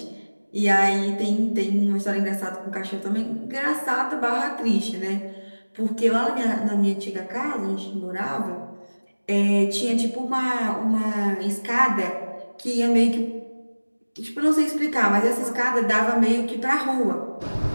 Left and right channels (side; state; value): both; inverted; correlation -1.00